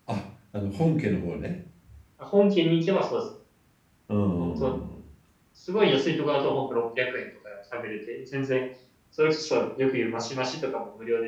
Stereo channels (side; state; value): both; identical; correlation 1.00